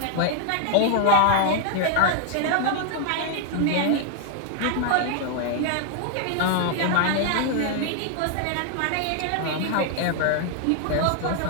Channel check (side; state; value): both; different; correlation 0.00